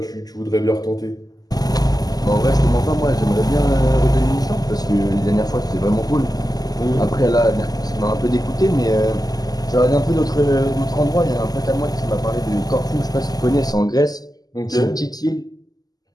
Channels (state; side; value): late; right; 0.18 ms